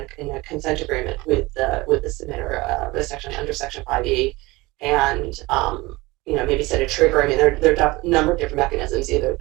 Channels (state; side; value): quieter; left; 21.6 dB